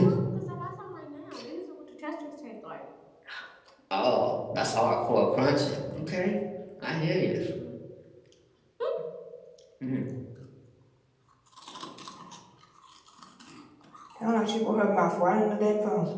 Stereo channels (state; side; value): identical; both; correlation 1.00